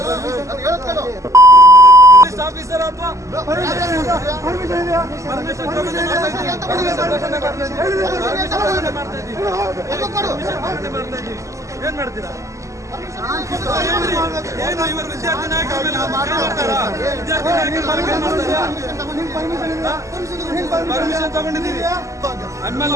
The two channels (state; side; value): late; left; 0.15 ms